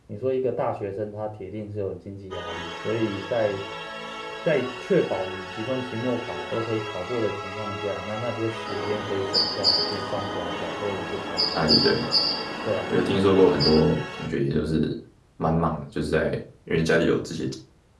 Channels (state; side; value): identical; both; correlation 1.00